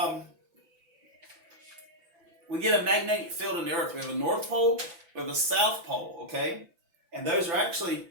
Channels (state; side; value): late; left; 6.0 ms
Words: magnetic field in the earth. We have a north pole, we have a south pole, okay? And those are actually